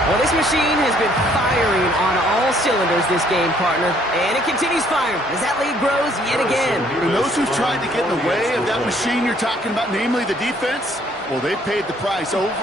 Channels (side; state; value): both; normal; correlation 0.64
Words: Well, this machine has been firing on all cylinders this game, partner. And it continues firing as that lead grows yet again. And those who've tried to get in the way of that machine you're talking about, namely the defense, well, they've paid the price